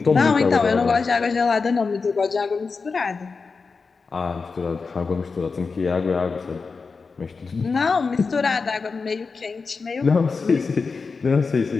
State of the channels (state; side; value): quieter; right; 4.6 dB